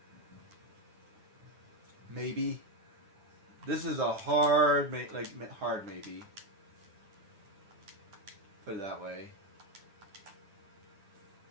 Maybe. This is a hard maybe. Put it that way.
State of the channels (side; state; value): left; late; 10 ms